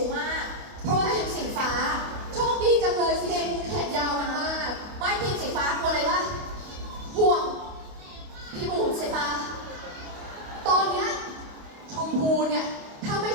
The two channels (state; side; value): late; left; 28 ms